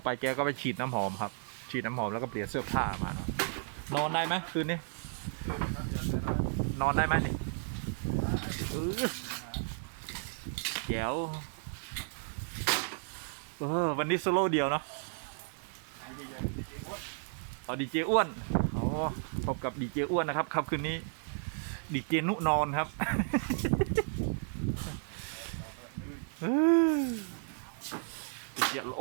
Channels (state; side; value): silent; left; digital silence